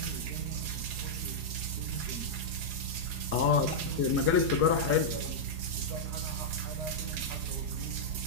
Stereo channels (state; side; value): late; left; 4.8 ms